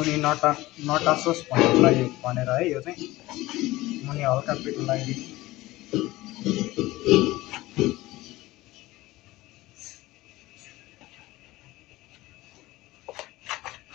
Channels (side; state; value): right; quieter; 18.5 dB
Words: नटासोस् भन्नुको लागि भनेर है। यो चाहिँ मुनि हल्का पिठो लागि